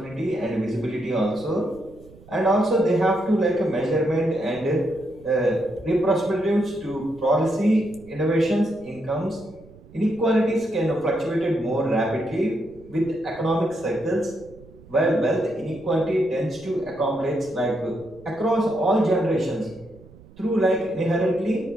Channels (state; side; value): noise; right; rumble, 23 dB below the sound